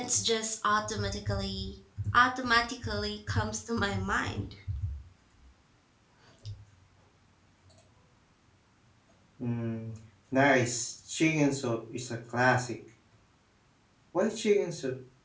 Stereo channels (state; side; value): identical; both; correlation 1.00